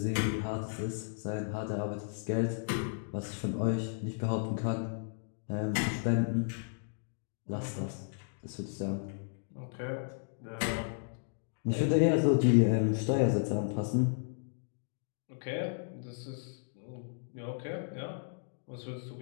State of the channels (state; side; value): silent; right; digital silence